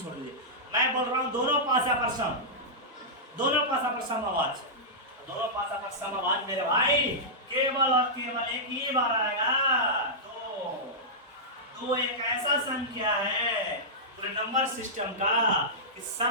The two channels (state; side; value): normal; both; correlation -0.12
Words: दीजिए। मैं बोल रहा हूँ दोनों पासा पर समभाज, दोनों पासा पर समभाज मेरे भाई केवल और केवल एक ही बार आएगा। दो एक ऐसा संख्या है पूरे नंबर सिस्टम का कि